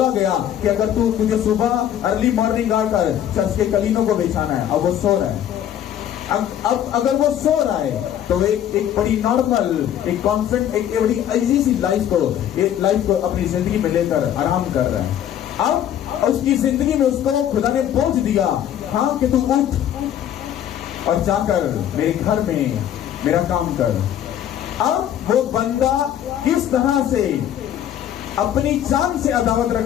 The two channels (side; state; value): right; quieter; 10.6 dB